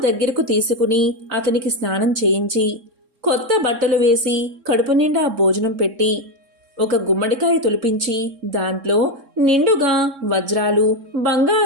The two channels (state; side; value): late; left; 3.6 ms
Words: దగ్గరకు తీసుకుని అతనికి స్నానం చేయించి కొత్త బట్టలు వేసి కడుపు నిండా భోజనం పెట్టి ఒక గుమ్మడికాయ తొలిపించి దాంట్లో నిండుగా వజ్రాలు